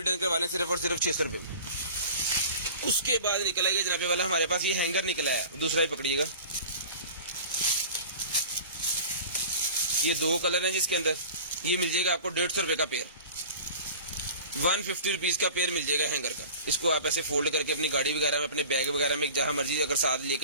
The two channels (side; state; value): both; inverted; correlation -0.39